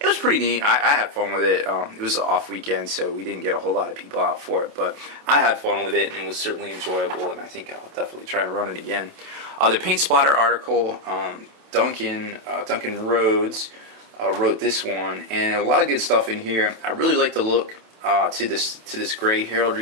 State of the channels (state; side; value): late; left; 28 ms